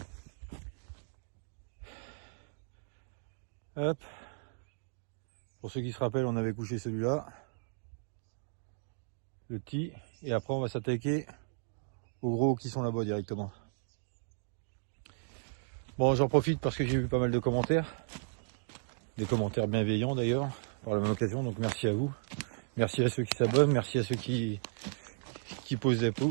Hop. Pour ceux qui se rappellent, on avait couché celui-là, le petit, et après on va s'attaquer aux gros qui sont là-bas directement. Bon, j'en profite parce que j'ai eu pas mal de commentaires, des commentaires bienveillants d'ailleurs, par la même occasion, donc merci à vous. Merci à ceux qui s'abonnent, merci à ceux qui posent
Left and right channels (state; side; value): silent; left; digital silence